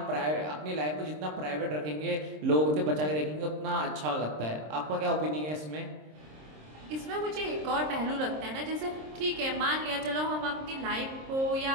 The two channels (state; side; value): late; left; 26 ms